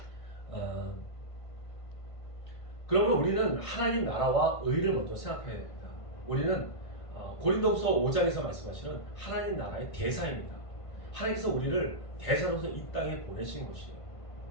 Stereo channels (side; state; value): right; late; 1.5 ms